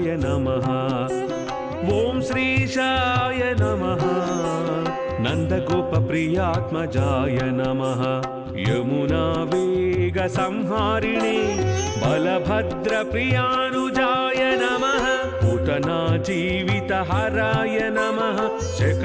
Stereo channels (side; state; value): both; identical; correlation 1.00